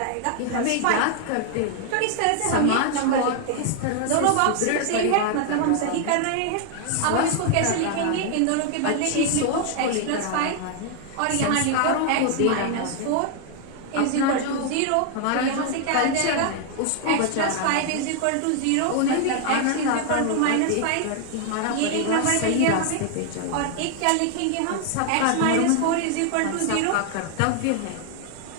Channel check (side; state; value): both; different; correlation 0.00